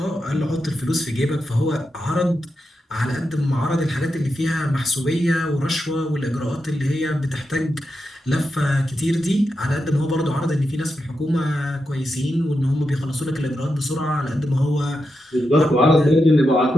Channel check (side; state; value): both; normal; correlation 0.87